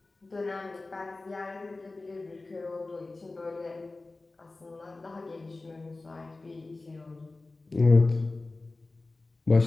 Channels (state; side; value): quieter; right; 3.3 dB